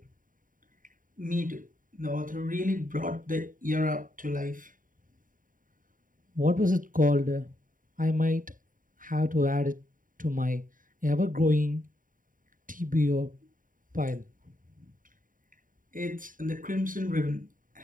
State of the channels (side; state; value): left; late; 0.39 ms